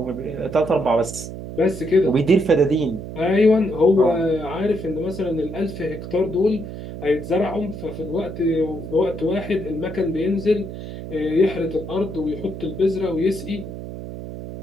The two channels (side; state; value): right; noise; hum, 10 dB below the sound